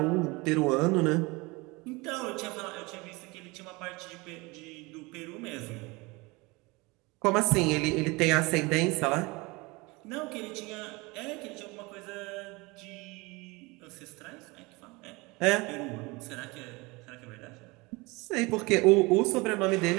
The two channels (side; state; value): left; quieter; 24.7 dB